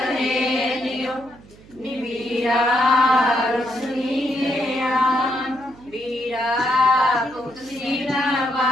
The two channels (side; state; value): right; noise; hum, 23 dB below the sound